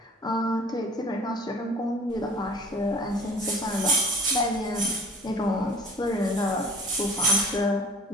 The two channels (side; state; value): both; normal; correlation 0.47